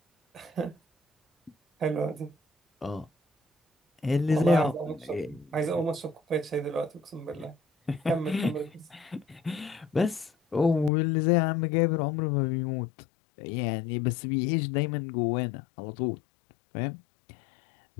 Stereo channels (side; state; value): right; drops out; at 10.9 s